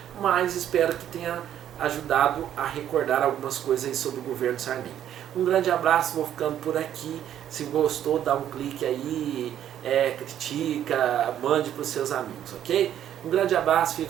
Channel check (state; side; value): quieter; left; 10.7 dB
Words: mas espero que tenha ajudado a recordar algumas coisas aí sobre o governo Sarney. Um grande abraço, vou ficando por aqui. Se gostou, dá um clique aí, critica, mande para os seus amigos, ok? Um grande abraço,